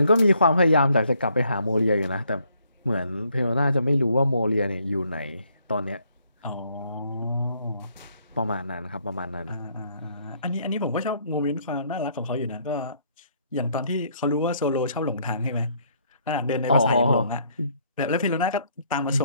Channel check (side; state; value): both; inverted; correlation -0.68